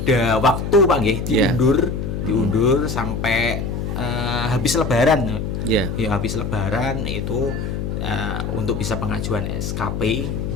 waktu Pak nggih diundur sampai habis lebaran. Ya habis lebaran itu untuk bisa pengajuan SKP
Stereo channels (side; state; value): left; noise; hum, 3 dB below the sound